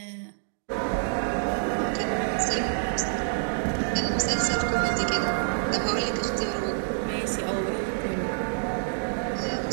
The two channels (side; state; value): left; silent; digital silence